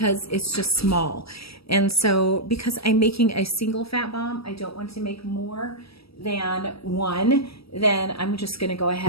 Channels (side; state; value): right; late; 0.76 ms